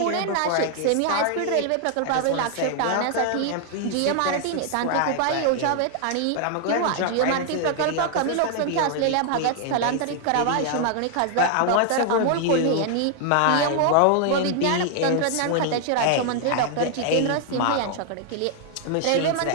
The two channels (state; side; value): different; both; correlation 0.00